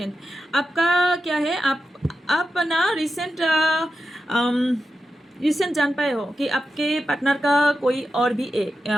आपका क्या है, आप ना रिसेंट जान पाए हो कि आपके पार्टनर का कोई और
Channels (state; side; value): normal; both; correlation 0.90